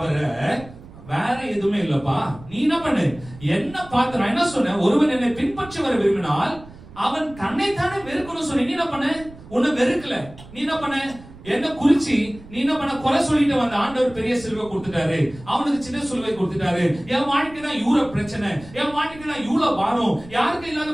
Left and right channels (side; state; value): right; noise; rumble, 19 dB below the sound